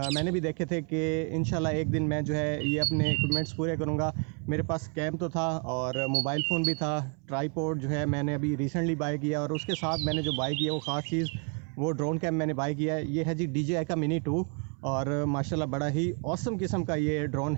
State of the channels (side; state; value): left; quieter; 39.5 dB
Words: मैंने भी देखे थे कि इंशाल्लाह एक दिन मैं जो है ये अपने इक्विपमेंट्स पूरे करूँगा। मेरे पास कैम तो था और मोबाइल फ़ोन भी था। ट्राईपॉड जो है मैंने अभी रिसेंटली बाय किया, और उसके साथ मैंने जो बाय किया वो ख़ास चीज़ वो ड्रोन कैम मैंने बाय किया है। ये है जी DJI का मिनी 2, और माशाल्लाह बड़ा ही ऑसम किस्म का ये ड्रोन